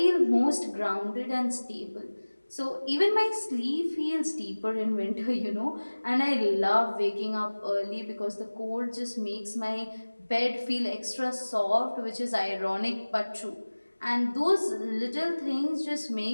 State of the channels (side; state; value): both; inverted; correlation -1.00